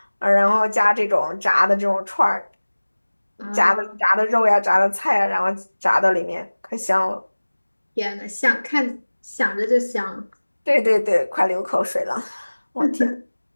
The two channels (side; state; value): both; inverted; correlation -1.00